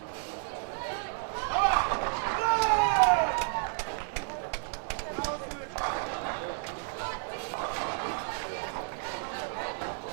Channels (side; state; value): left; silent; 57 dB below the other